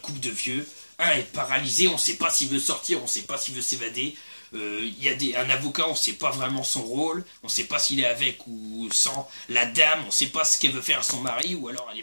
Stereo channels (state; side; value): inverted; both; correlation -1.00